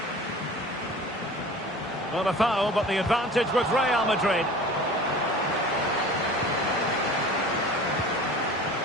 Well, a foul, but the advantage with Real Madrid.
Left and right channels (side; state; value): both; normal; correlation 0.41